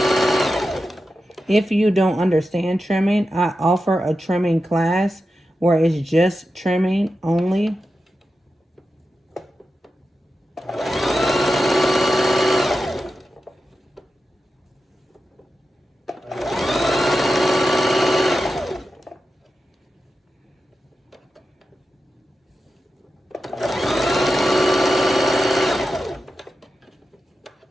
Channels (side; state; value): both; normal; correlation 0.90